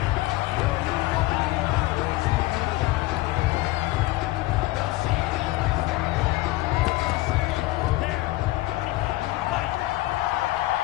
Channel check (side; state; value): right; quieter; 18.6 dB